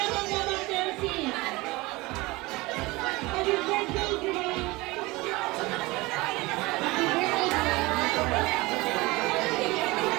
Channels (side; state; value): left; quieter; 22.1 dB